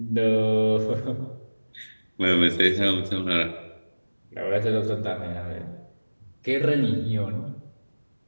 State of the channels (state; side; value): inverted; both; correlation -1.00